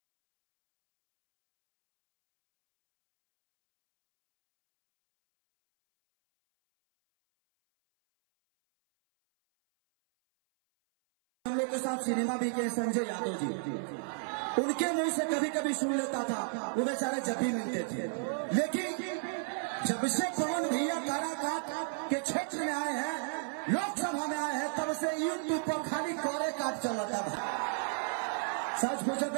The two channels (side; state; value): left; silent; 56 dB below the other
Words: लोग के साथ सिनेमा भी किए, संजय यादव जी, उनके मुंह से कभी कभी सुन लेता था, वो बेचारे जब भी मिलते थे। लेकिन जब से पवन भैया काराकाट के क्षेत्र में आए हैं, लोकसभा में आए हैं, तब से यूट्यूब पर खाली कोरे काट चलता था। सच पूछो